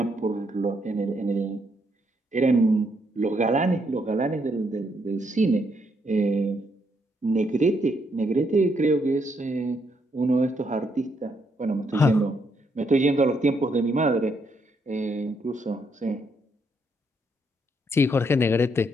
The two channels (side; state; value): both; normal; correlation 0.75